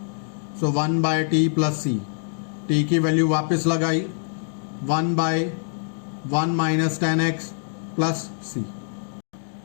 so 1 by T plus C. T की वैल्यू वापस लगाई, 1 by 1 minus 10x plus c.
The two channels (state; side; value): silent; right; digital silence